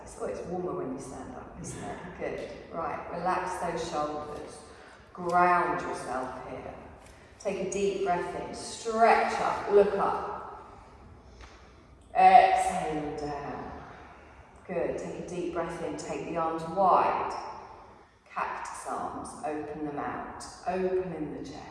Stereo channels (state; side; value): identical; both; correlation 1.00